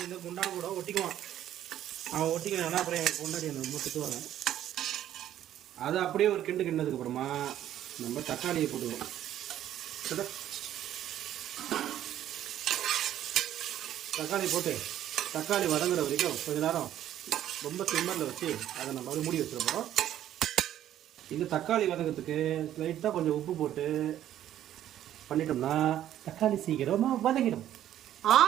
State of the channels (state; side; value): quieter; left; 11.8 dB